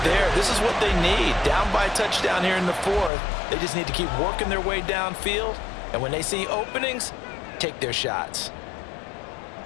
there. This is what they need. Down by a touchdown here in the 4th. They just need to keep working their way downfield. And when they see openings, take their shots.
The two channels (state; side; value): drops out; right; at 3.1 s